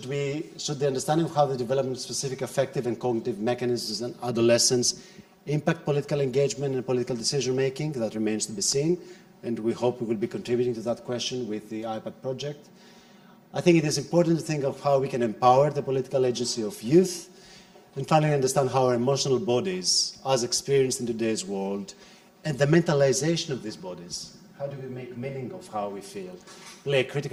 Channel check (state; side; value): identical; both; correlation 1.00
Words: the understanding of how the development of specific affective and cognitive mechanisms in adolescence impact political engagement and political decision-making? That remains to be seen, and we hope we will be contributing to that question with the iPad project. I think it is important to think of how we can empower the political agency of youth, and finally understand how our emotional bodies, as experienced in today's world, and the mentalization of these bodies, how do we make meaning of how we feel, play a